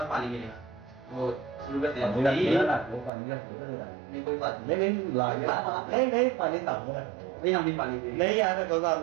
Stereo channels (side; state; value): left; drops out; at 3.1 s